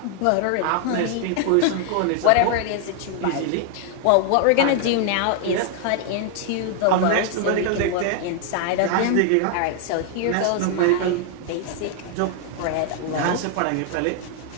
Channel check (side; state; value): both; different; correlation 0.00